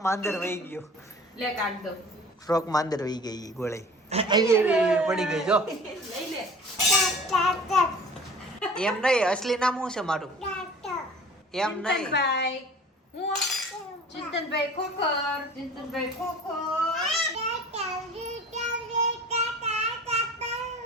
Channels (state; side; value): normal; both; correlation 0.44